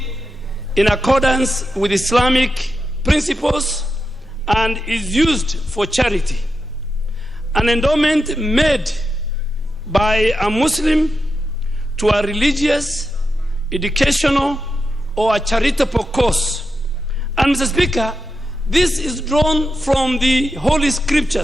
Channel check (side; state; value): both; normal; correlation 0.88